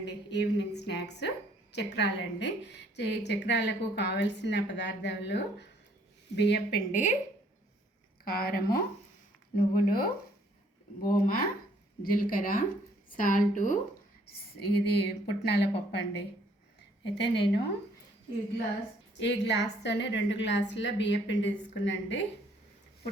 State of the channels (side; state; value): both; normal; correlation 0.63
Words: ఈవినింగ్ స్నాక్స్ చక్రాలండి. చక్రాలకు కావలసిన పదార్థాలు బియ్యపిండి, కారము, నువ్వులు, ఓమ, జీలకర్ర, సాల్టు, ఇది పుట్నాల పప్పు అండి. అయితే నేను ఈ గ్లాస్తోనే 2 గ్లాసుల బియ్యపిండి తీసుకున్నాండి.